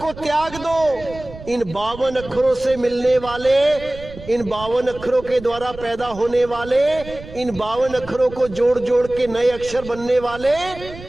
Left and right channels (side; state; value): right; noise; rumble, 15 dB below the sound